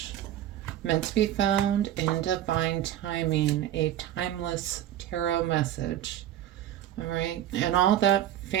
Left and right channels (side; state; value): left; quieter; 12.1 dB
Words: meant to be found in divine timing, a timeless tarot message. All right, and all that